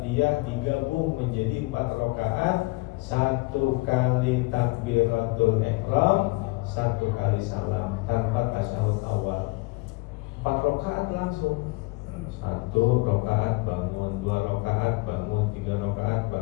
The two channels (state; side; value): quieter; right; 24.4 dB